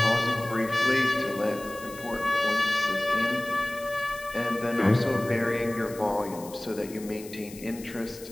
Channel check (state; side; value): noise; left; hiss, 17 dB below the sound